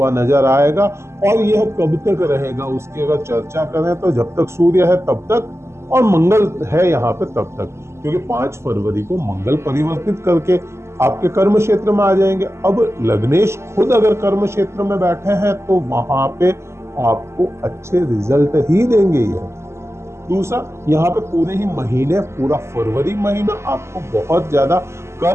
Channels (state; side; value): late; left; 0.13 ms